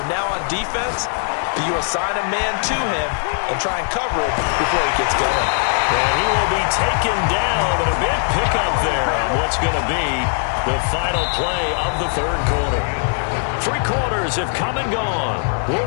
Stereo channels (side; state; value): right; silent; 61 dB below the other